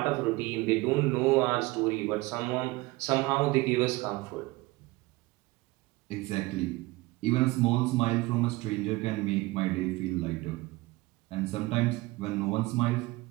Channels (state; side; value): quieter; left; 21.2 dB